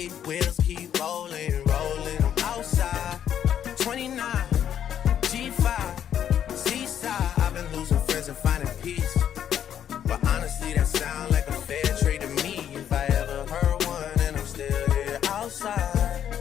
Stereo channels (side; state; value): right; quieter; 9.6 dB